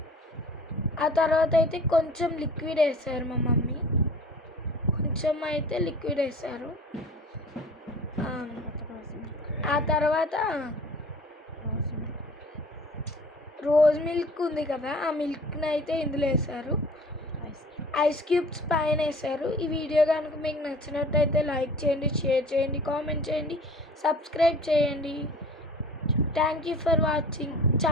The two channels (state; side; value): normal; both; correlation 0.46